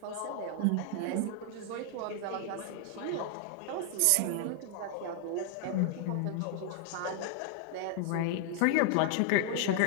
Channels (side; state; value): both; different; correlation 0.00